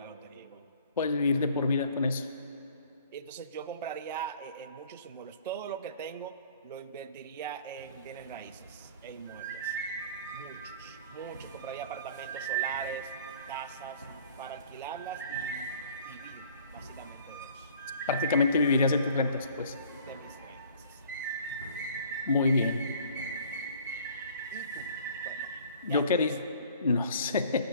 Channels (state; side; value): inverted; both; correlation -0.52